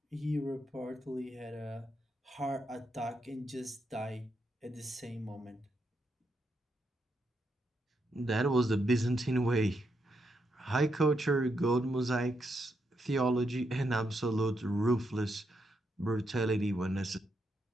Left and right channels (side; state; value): both; normal; correlation 0.81